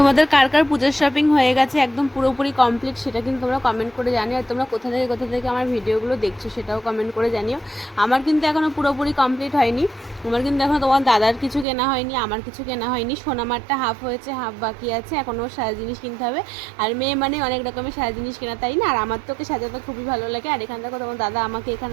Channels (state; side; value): drops out; left; at 11.7 s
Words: কার কার পুজোর শপিং হয়ে গেছে একদম পুরোপুরি কমপ্লিট, সেটা কিন্তু তোমরা কমেন্ট করে জানিও। আর তোমরা কোথা থেকে আমার ভিডিওগুলো দেখছো সেটাও কমেন্ট করে জানিও। আমার কিন্তু এখনও পুরোপুরি কমপ্লিট হয়নি, আমার কিন্তু এখনও তোমার দাদার কিছু কেনা হয়নি, আমার কিছু কেনা হয়নি। সোনামারটা হাফ হয়েছে, হাফ বাকি আছে, এখনও সাজা জিনিস কিনতে হবে। আর মেয়ে মানে অনেক রকমের সাজা জিনিস কেনা, তাই না? আর আমার তো ওকে সাজাতে খুবই ভালো লাগে। আর এখান থেকে তোমার দাদা আমাকে